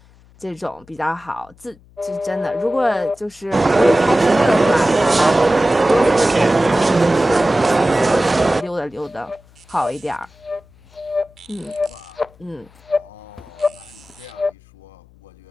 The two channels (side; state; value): left; noise; hum, 27 dB below the sound